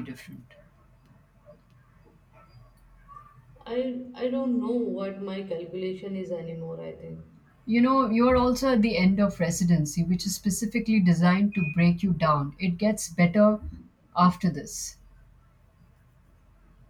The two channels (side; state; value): both; identical; correlation 1.00